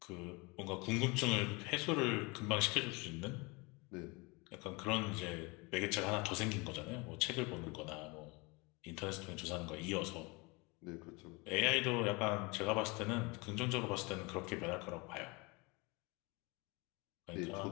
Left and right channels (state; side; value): quieter; right; 27.1 dB